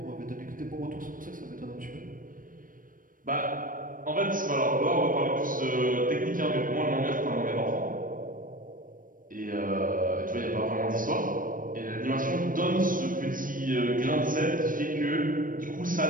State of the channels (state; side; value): late; left; 0.40 ms